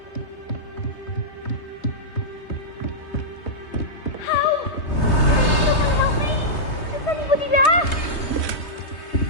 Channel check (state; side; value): late; right; 3.2 ms